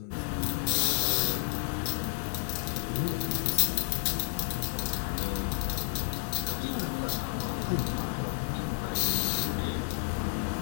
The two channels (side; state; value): right; silent; 57 dB below the other